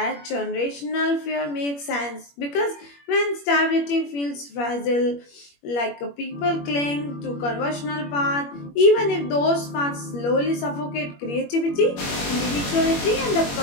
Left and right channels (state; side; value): late; right; 21 ms